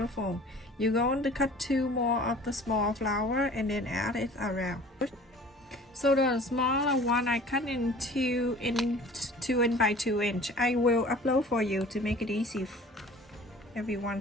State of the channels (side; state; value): both; normal; correlation 0.46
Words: You're going to cut two more of the small flower and then add it around. So the smaller one I cut in 2 inch by 2 inch. I will upload for you to make it easy. Everyone